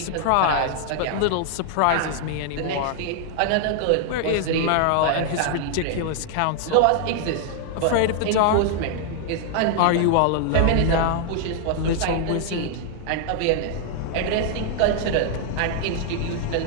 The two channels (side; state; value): both; different; correlation 0.00